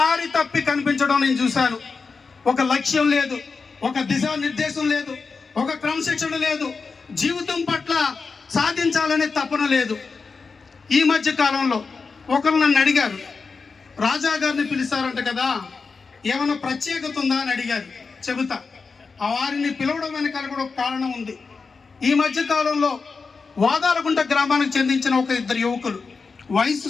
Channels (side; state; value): right; quieter; 4.7 dB